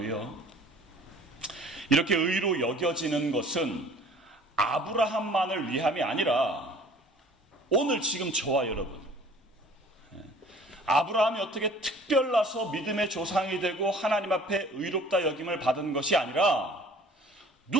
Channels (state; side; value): normal; both; correlation 0.50